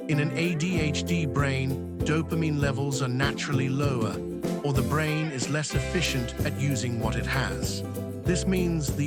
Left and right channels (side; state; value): both; identical; correlation 1.00